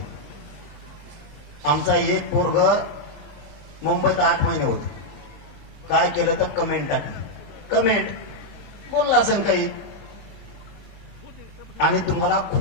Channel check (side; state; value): both; normal; correlation -0.01